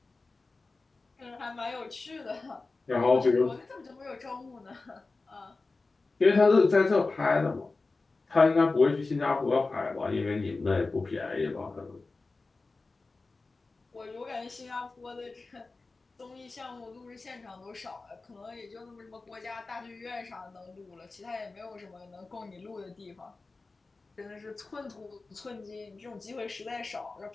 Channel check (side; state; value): right; quieter; 3.7 dB